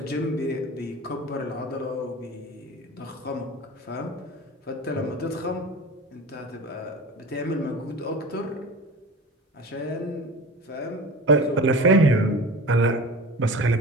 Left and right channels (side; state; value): both; normal; correlation 0.35